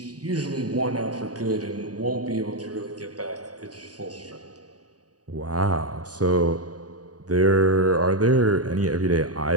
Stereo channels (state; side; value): late; left; 0.68 ms